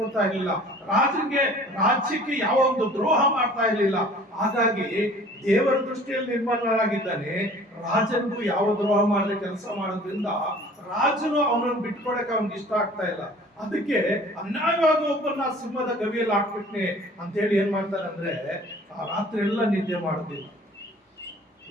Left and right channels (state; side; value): normal; both; correlation 0.49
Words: ಇರ್ಲಿಲ್ಲ. ರಾಜ್ಯಕ್ಕೆ ಯಾವ ಒಂದು ದ್ರೋಹ ಮಾಡ್ತಾ ಇರ್ಲಿಲ್ಲ. ಹಾಗಾಗಿ ದೇವರ ದೃಷ್ಟಿಯಲ್ಲಿ ನಿರ್ಮಲನಾಗಿದ್ದಾನೆ. ರಾಜನಿಗೂ ಯಾವ ದ್ರೋಹ ಮಾಡದೆ ಕೆಲಸ ಮಾಡೋದ್ರಿಂದ ರಾಜನು ಅವನನ್ನು ಬಿಟ್ಕೊಡಕ್ಕೆ ಅವನಿಗೆ ಇಷ್ಟ ಆಗ್ತಾ ಇಲ್ಲ. ಅದಕ್ಕೆ ಅನ್ಯಾಯವಾಗಿ ಒಬ್ಬನ ಸಿಂಹದ ಗವಿಯಲ್ಲಿ ಹಾಕ್ಬಿಟ್ನೆ ಅಂತ ಹೇಳಿ ಏನ್ ಮಾಡ್ತಾರೆ ಅಂದ್ರೆ ಆ ರಾತ್ರಿ ಎಲ್ಲ ನಿದ್ದೆ ಮಾಡೋದಿಲ್ಲ.